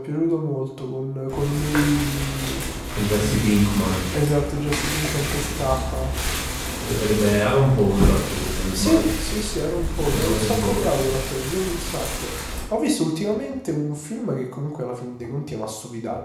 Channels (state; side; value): identical; both; correlation 1.00